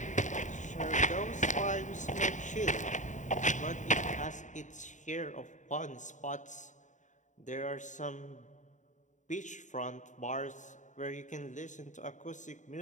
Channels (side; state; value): right; late; 0.36 ms